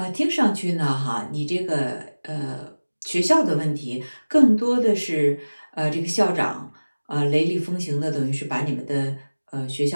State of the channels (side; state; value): both; inverted; correlation -1.00